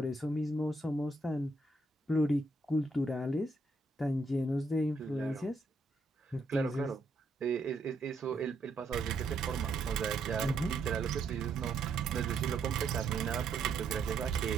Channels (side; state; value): left; quieter; 3.0 dB